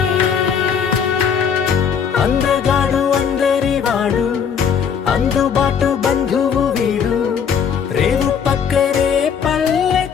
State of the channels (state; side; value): quieter; right; 7.2 dB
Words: అందగాడు అందరి వాడు అందుబాటు బంధువు వీడు రేవు పక్కరే